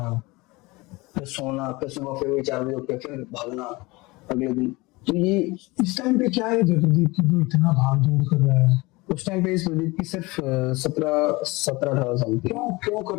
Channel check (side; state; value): right; quieter; 23.0 dB